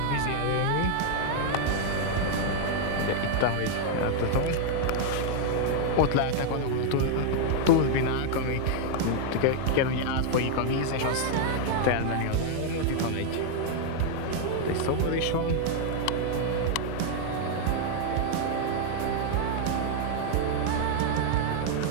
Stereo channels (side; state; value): both; different; correlation 0.00